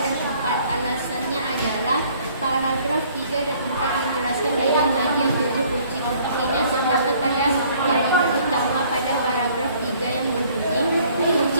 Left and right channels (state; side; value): inverted; both; correlation -0.58